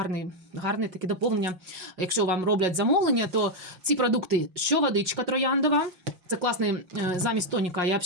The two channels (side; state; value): left; late; 5.5 ms